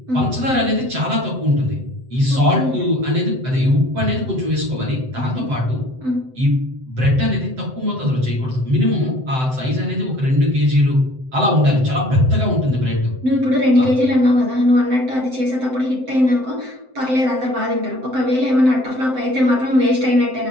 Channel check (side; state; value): left; late; 7.8 ms